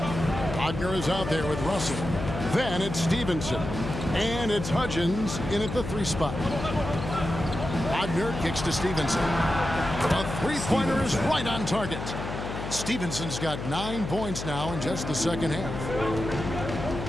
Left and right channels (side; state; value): left; noise; hum, 7 dB below the sound